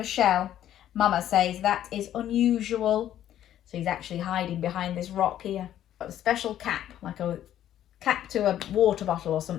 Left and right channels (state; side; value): quieter; right; 11.6 dB